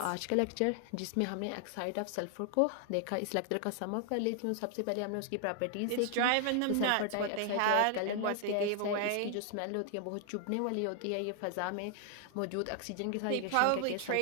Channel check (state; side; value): different; both; correlation 0.00